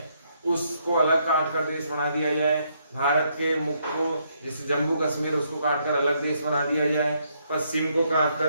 उसको अलग काटकर देश बना दिया जाए। भारत के मुख्य को, जैसे जम्मू कश्मीर, उसको काटकर अलग देश बना दिया जाए, पश्चिम को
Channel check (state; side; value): inverted; both; correlation -0.73